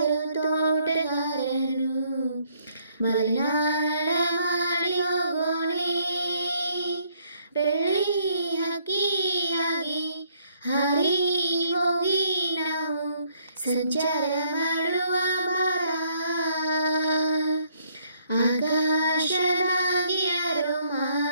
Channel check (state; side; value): inverted; both; correlation -0.67